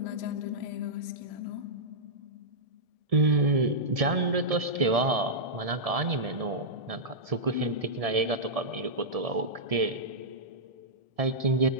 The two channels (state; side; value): late; left; 1.7 ms